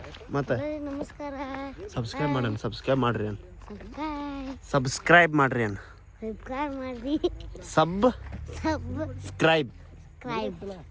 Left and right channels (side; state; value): both; identical; correlation 1.00